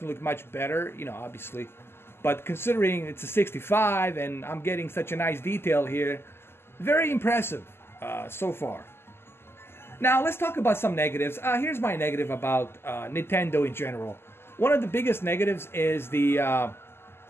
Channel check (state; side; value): late; right; 0.12 ms